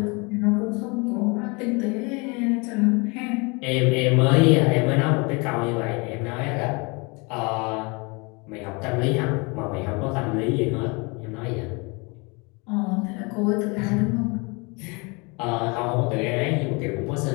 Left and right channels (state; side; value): quieter; right; 29.3 dB